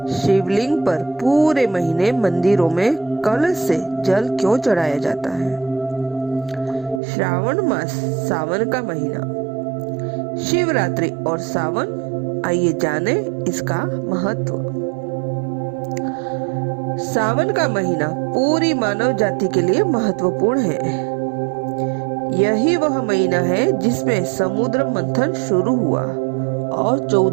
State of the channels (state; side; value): drops out; left; at 7.0 s